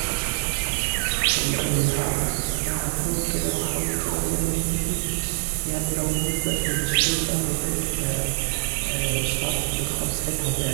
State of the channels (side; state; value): left; silent; digital silence